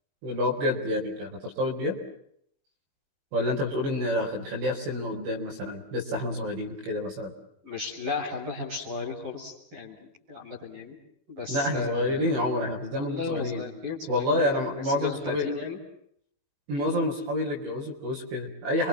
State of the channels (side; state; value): left; late; 21 ms